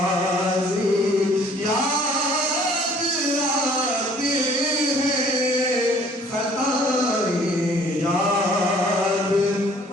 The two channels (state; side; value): normal; both; correlation 0.56